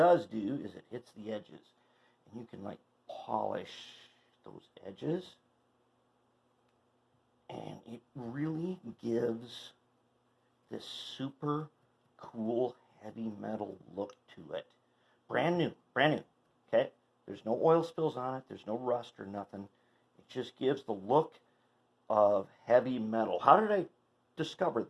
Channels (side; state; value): both; identical; correlation 1.00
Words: do is it hits the edges. And you can like polish those edges. And it really gives this super cool heavy metal look to it. Brand new, okay? There's no oil spills on it, there's no rust or nothing. It just gives the look of heavy metal. How did I discover